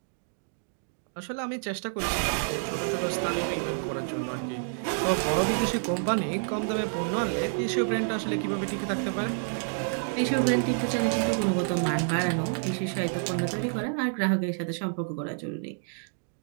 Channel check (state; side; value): silent; left; digital silence